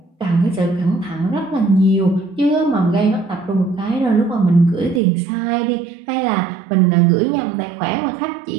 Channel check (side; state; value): left; drops out; at 5.0 s